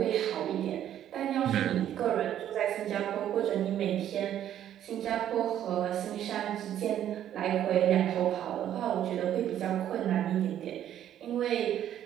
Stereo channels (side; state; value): left; quieter; 11.0 dB